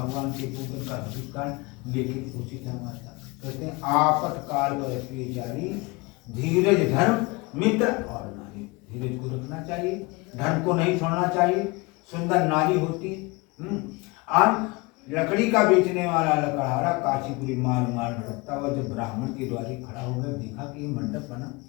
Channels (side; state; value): right; quieter; 25.5 dB